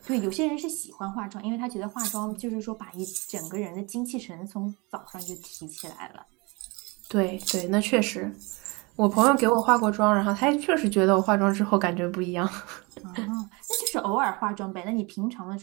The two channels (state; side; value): quieter; left; 27.2 dB